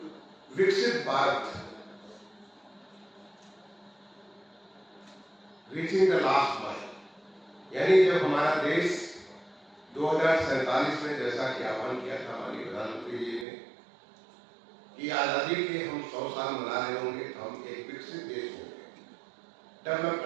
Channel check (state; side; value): drops out; left; at 13.5 s